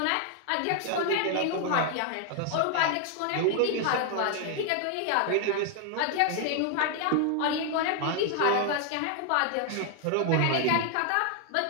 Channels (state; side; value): different; both; correlation 0.00